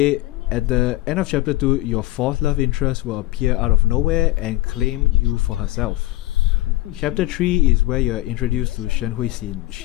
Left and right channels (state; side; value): quieter; right; 17.6 dB